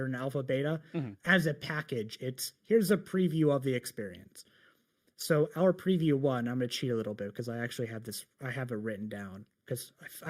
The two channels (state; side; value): identical; both; correlation 1.00